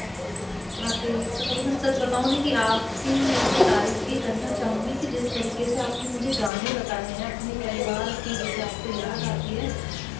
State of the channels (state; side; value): drops out; right; at 6.5 s